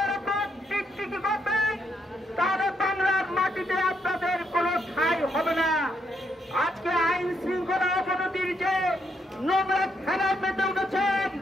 রকম টিকটিকি করবেন, তাহলে বাংলার মাটিতে আপনাদের কোন ঠাঁই হবে না। আজকে আইন শৃঙ্খলা অবনতির যে নোংরা খেলার মেতে উঠেছেন,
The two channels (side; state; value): both; normal; correlation 0.76